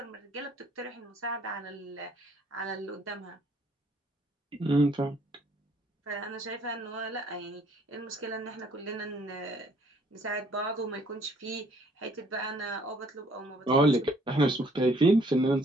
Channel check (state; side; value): normal; both; correlation 0.62